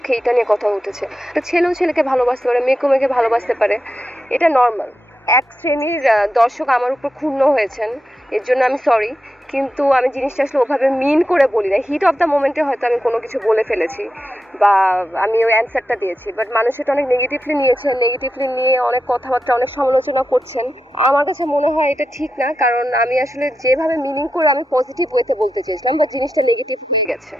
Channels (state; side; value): normal; both; correlation 0.88